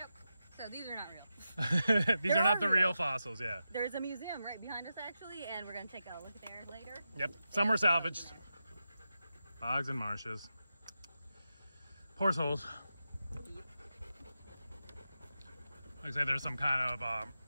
So these are not real. These are not the real fossils, yeah. There's a museum right behind us, actually, and we're going to take a look there later. Yep, some were salvaged. Bogs and marshes. Horse holes. Looks like there's some kind of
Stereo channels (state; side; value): inverted; both; correlation -0.89